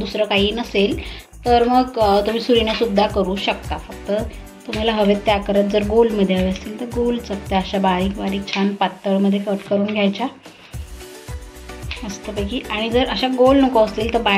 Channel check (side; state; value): both; identical; correlation 1.00